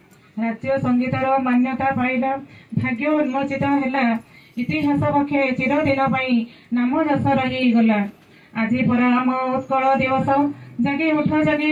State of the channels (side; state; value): both; identical; correlation 1.00